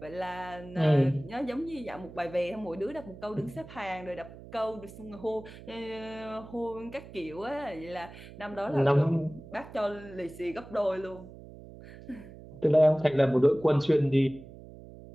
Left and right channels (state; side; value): noise; right; hum, 16 dB below the sound